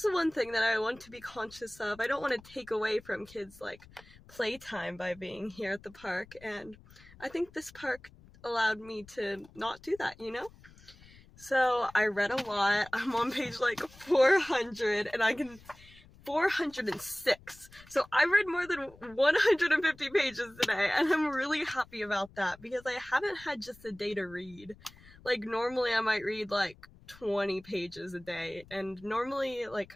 the one thing that I want to be conscious of. I don't want to take away from kids like playtime by being here at the park, and I think this park allowed me to not do that, you know? So I read a lot. I'm on page like 400 and 406. So I read more than 150 pages today, and I'm really happy about that because I haven't had just a day to read. Like normally I might read like 20 pages a day, and normally like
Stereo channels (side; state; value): left; noise; rumble, 23 dB below the sound